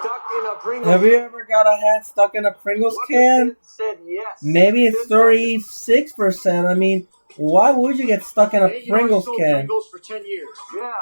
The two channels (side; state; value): both; inverted; correlation -1.00